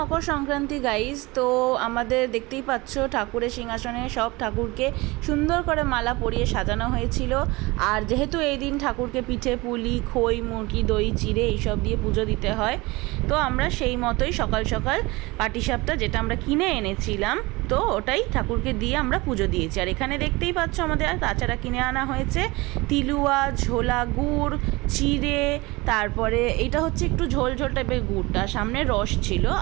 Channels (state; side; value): quieter; left; 22.9 dB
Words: Sankranti guys. তো আমাদের দেখতেই পাচ্ছ ঠাকুরের সিংহাসনে সব ঠাকুরকে সুন্দর করে মালা পরিয়ে সাজানো হয়েছিল। আর যেহেতু এই দিন ঠাকুরকে পিঠে পুলি খই মুরগি দই চিড়ে এইসব দিয়ে পুজো দিতে হয়, তো আমরা সেই মতোই সকাল সকাল পাটিসাপটা যেটা আমরা কিনে এনেছিলাম, তো ওটাই ঠাকুরকে দিয়ে আমরা পুজো দিয়েছি। আর এখানে দেখতেই পাচ্ছ আমাদের তাছাড়া কিনে আনা হয়েছে তিলুয়া, ঝোলা গুড়, চিড়ে, তারপরে এইটা হচ্ছে একটু ঝোল ঝোল টাইপের গুড়টা, সামনে রস ছিল,